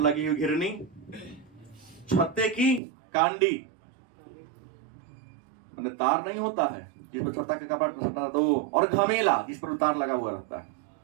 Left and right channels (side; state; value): left; drops out; at 2.8 s